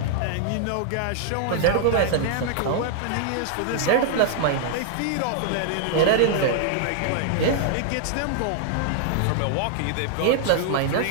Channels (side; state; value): both; different; correlation -0.01